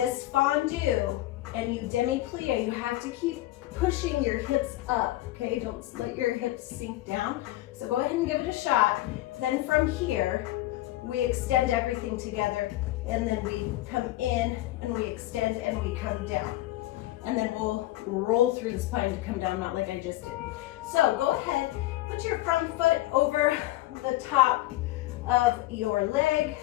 fondue and you demi-plie, you have to keep pushing your hips up, okay? Don't let your hips sink down. So go ahead and give it a shot. Then from here, we extend everything together, and then we come in and we extend and we come down. And then we'll roll through the spine to come down, not like I just did. So go ahead, put your front foot over the top of your leg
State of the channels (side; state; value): right; quieter; 16.6 dB